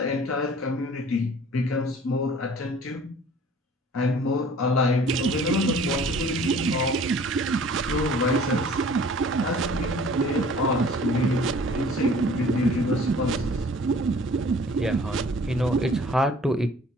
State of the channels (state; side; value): normal; both; correlation 0.50